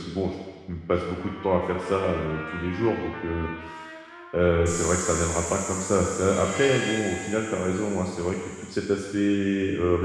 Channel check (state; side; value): identical; both; correlation 1.00